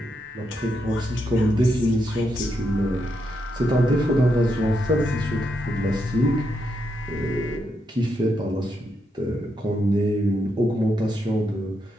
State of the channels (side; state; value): both; normal; correlation 0.81